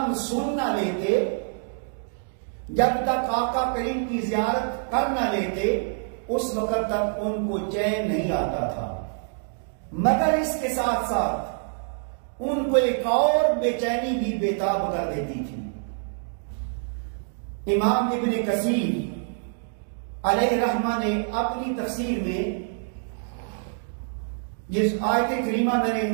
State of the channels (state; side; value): silent; left; digital silence